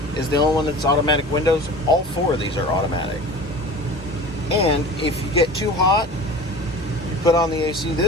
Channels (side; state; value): both; normal; correlation 0.38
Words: is the only one that's automatic windows. All four of these are automatic. And if you get too hot, you put on the AC.